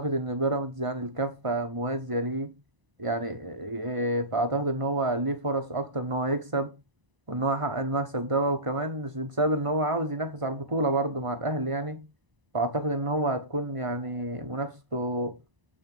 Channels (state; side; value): late; left; 1.0 ms